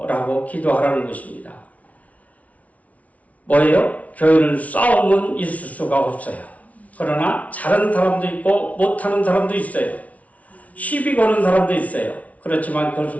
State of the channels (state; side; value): late; right; 0.068 ms